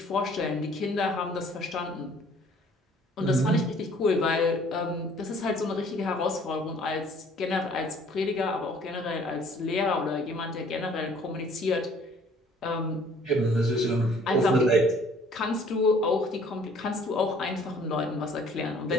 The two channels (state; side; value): normal; both; correlation 0.56